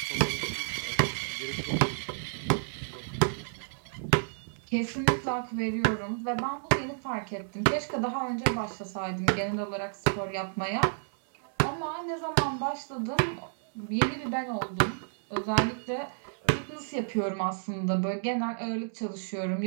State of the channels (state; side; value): silent; left; 57 dB below the other